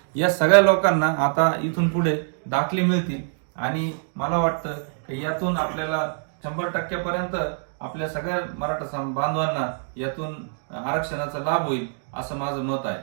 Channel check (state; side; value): silent; left; digital silence